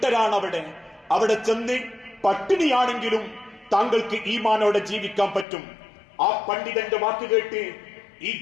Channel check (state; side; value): drops out; right; at 5.5 s